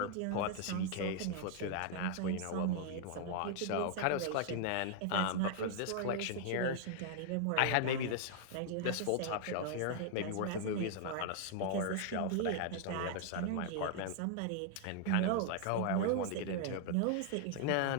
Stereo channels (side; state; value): both; different; correlation 0.00